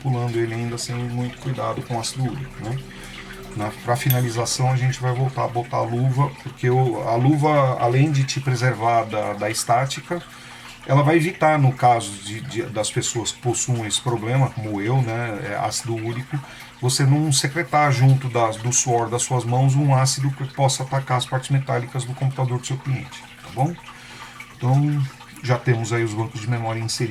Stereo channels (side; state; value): both; identical; correlation 1.00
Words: ele ainda sem muito cuidado com ácido úrico, né? Para finalização a gente vai voltar a botar a luva, porque a luva, além de te preservar da estática, ela vai evitar, no caso das pessoas que possuem esse problema, como eu, né, ácido úrico, você não secretar junto do suor das suas mãos um ácido que possa atacar as partes metálicas do computador do seu cliente, tá bom? Então, já temos aí os bancos de memória